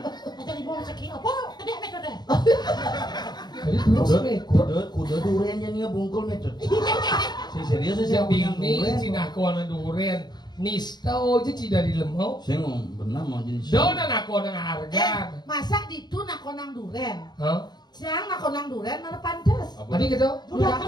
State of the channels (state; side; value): late; right; 0.20 ms